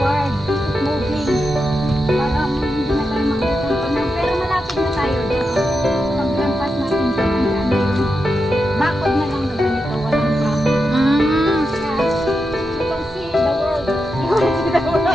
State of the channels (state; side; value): normal; both; correlation 0.87